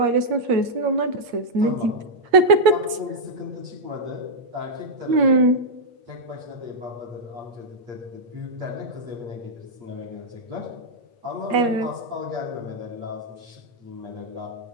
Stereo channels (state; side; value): late; left; 8.5 ms